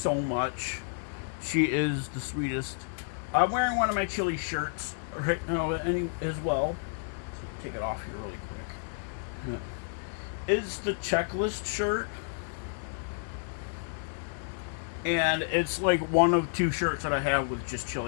much. She is the sweetest. I'm wearing one of my Chili shirts right now as well. take it off here really quick. Is the Checklist shirt. And it's like one of two shirts that I have with just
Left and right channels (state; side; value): silent; right; digital silence